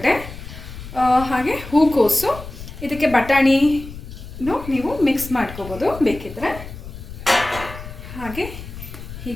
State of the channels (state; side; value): noise; left; rumble, 13 dB below the sound